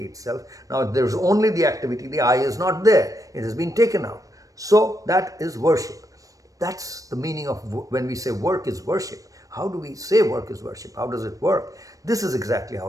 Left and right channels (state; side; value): late; left; 0.16 ms